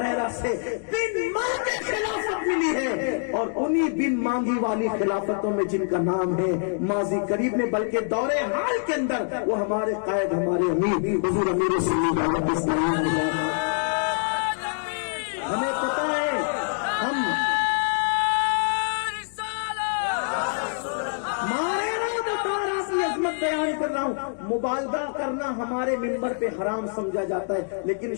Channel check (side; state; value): right; silent; digital silence